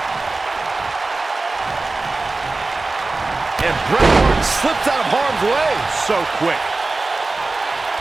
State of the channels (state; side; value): quieter; left; 3.4 dB